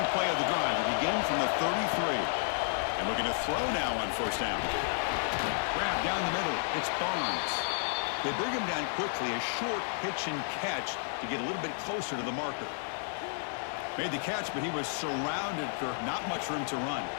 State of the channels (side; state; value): right; silent; digital silence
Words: play of the drive. We begin from the 33. And looking to throw now on first down. Grab down the middle. It's Barnes. They bring him down quickly. A short pitch and catch to get a little bit closer to the marker. Made the catch, but he was surrounded for not much room to run.